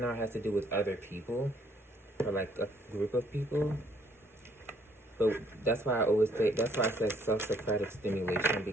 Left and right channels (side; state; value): both; normal; correlation 0.65